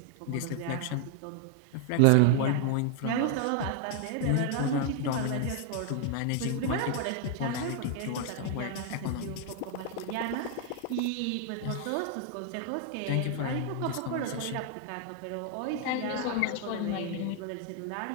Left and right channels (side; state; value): both; different; correlation 0.00